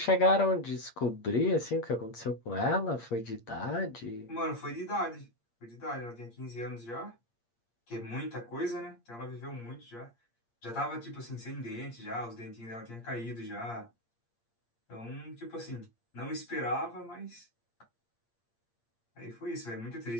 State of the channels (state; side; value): late; right; 8.6 ms